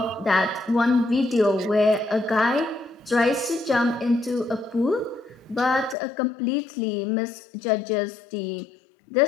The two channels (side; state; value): right; drops out; at 6.0 s